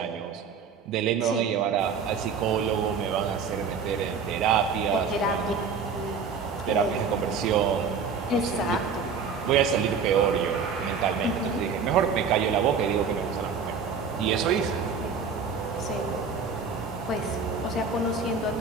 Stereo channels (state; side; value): quieter; left; 5.6 dB